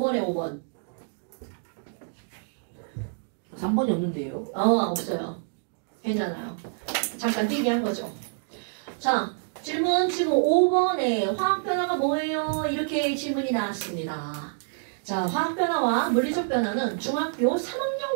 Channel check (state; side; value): silent; left; digital silence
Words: 5번. 3번이 없는데요? 없어요. 괜찮아요. 잠깐 뛰게 한 거죠. 자, 질문 지금 5번에 화학변화가 뭐예요? 이렇게 질문이 나왔습니다. 자, 화학변화와 물리적 변화는 중학교 3학년